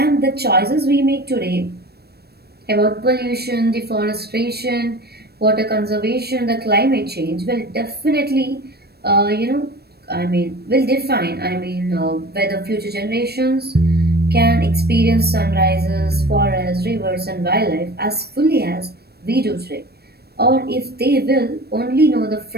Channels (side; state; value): left; late; 0.47 ms